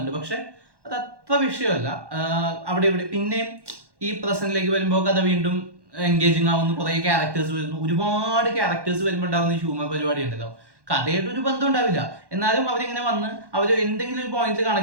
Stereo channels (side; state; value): left; late; 1.1 ms